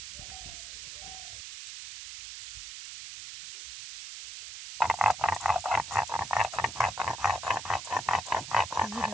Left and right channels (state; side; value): noise; right; hiss, 9 dB below the sound